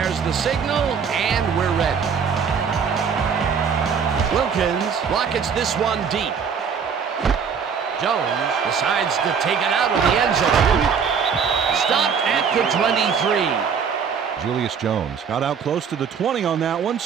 the signal, and we're ready. Wilkins rockets this one deep. Jones decides to take it out of the end zone. Stopped at the 23. Julius Jones got out close to the 20 on that one,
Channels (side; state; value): left; quieter; 6.6 dB